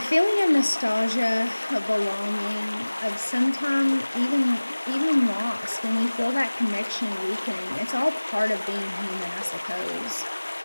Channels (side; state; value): both; inverted; correlation -1.00